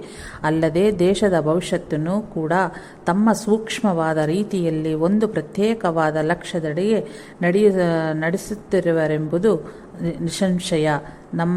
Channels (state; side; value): identical; both; correlation 1.00